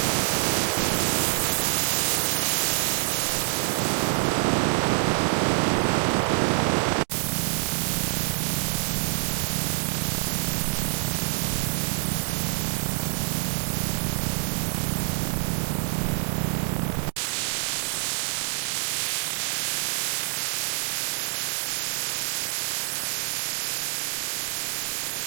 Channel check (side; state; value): left; silent; 61 dB below the other